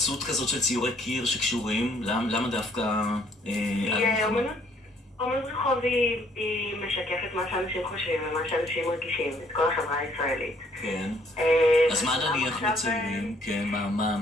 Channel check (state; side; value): normal; both; correlation 0.65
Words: כזאת של ציורי קיר שקשורים? למה דווקא... אומנות רחוב היא משקפת מה שאנשים חושבים ומה שאנשים מרגישים, את כל החברה הישראלית. כן. אז מה נניח מציירים? כן,